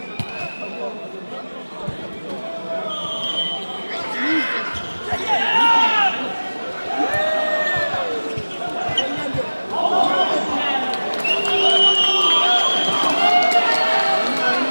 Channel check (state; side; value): inverted; both; correlation -1.00